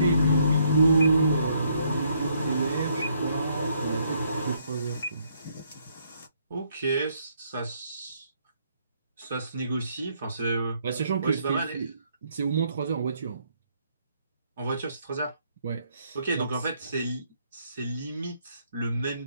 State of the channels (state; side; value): inverted; both; correlation -0.70